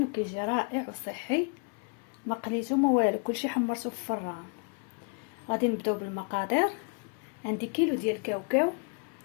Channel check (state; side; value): quieter; right; 37.0 dB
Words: وكيجي رائع وصحي، ما قليتو ما والو، كلشي حمرتو في الفران. غادي نبداو بالمقادير. عندي كيلو ديال الكاوكاو